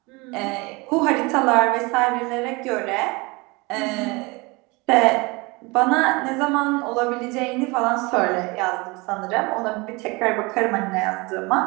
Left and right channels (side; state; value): left; quieter; 25.8 dB